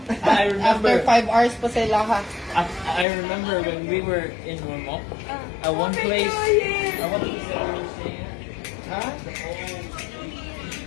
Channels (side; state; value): right; drops out; at 3.1 s